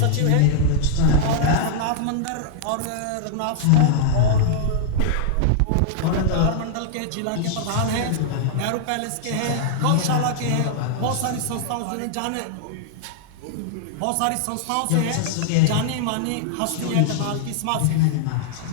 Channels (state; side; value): different; both; correlation -0.01